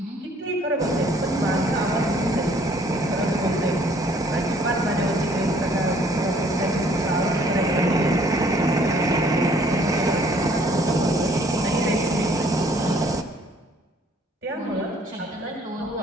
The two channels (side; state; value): both; normal; correlation 0.60